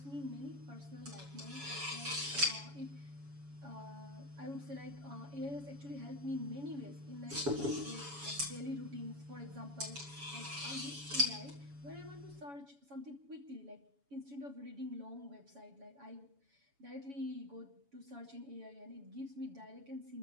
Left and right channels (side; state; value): left; late; 7.1 ms